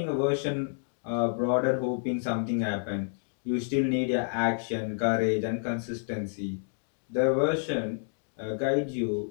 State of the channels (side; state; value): right; silent; digital silence